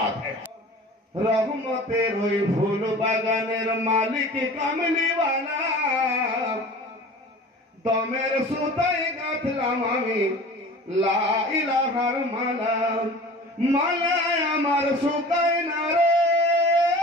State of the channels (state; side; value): normal; both; correlation 0.41